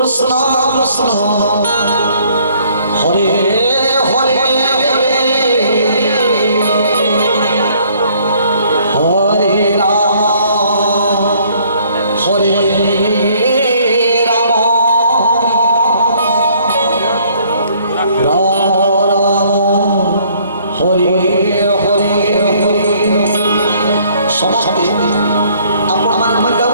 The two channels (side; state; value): both; inverted; correlation -0.61